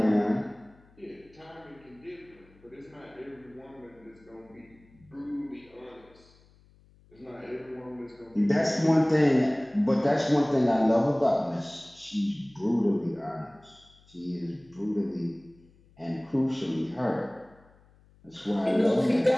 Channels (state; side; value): noise; left; hum, 29 dB below the sound